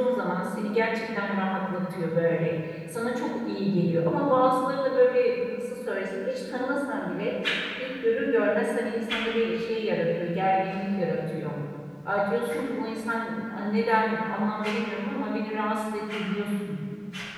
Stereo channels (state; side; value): identical; both; correlation 1.00